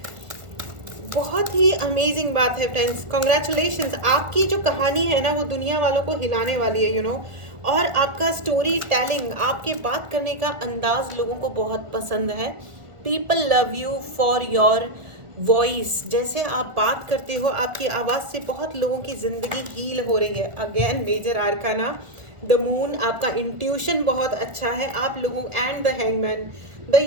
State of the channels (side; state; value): left; late; 1.4 ms